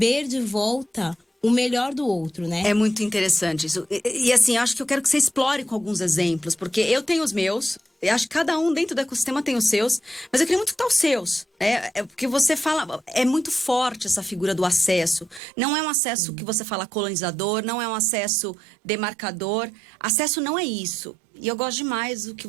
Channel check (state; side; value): drops out; left; at 15.4 s